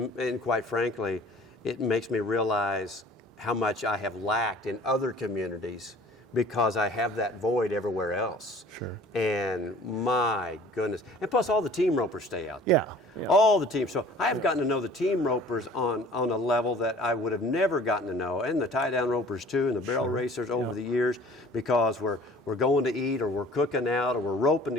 quite frankly, it makes me realize how much I have lacked in other communities because I have that void everywhere else. Sure. And my goodness. And plus all the team ropers stay out there. Yeah. All the teams. So I have gotten to know the team ropers on a level that I would have never gotten to know, and the tie-down ropers too, and the barrel racers over the years, because we're going to eat or we're cooking out or we're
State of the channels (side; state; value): both; normal; correlation 0.49